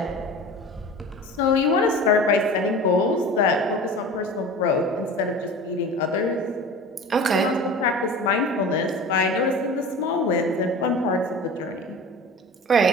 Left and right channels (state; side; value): normal; both; correlation 0.36